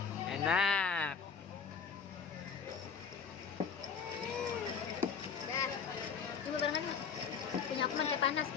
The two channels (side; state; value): right; quieter; 6.3 dB